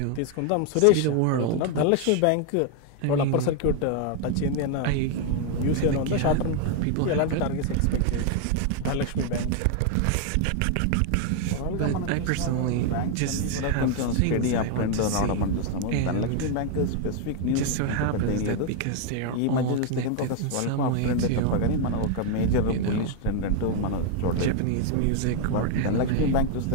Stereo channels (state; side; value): different; both; correlation 0.01